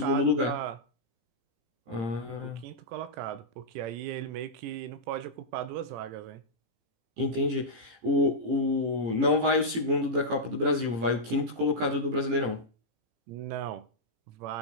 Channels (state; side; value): late; left; 18 ms